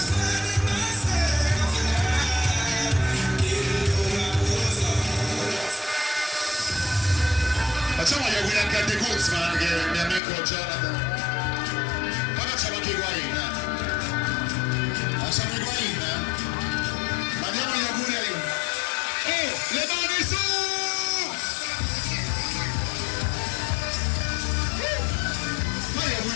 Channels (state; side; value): drops out; right; at 10.2 s